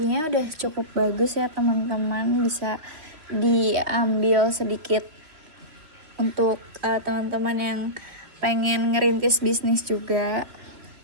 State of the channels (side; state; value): left; late; 3.1 ms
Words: udah cukup bagus ya teman-teman, bisa diambil sedikit untuk teman-teman yang pengen ngerintis bisnis juga.